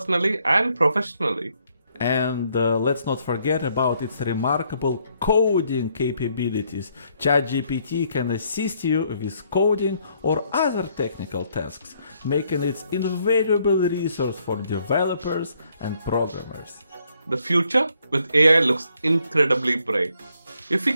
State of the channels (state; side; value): inverted; both; correlation -0.71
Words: and professionally. And let's not forget about its remarkable coding capabilities. ChatGPT can assist you with coding or other technical tasks, making it an invaluable resource for developers and programmers. The future with AI looks incredibly bright. If we